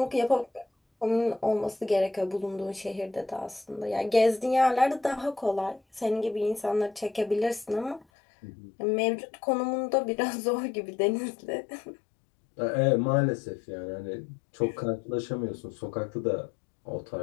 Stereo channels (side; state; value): right; drops out; at 8.1 s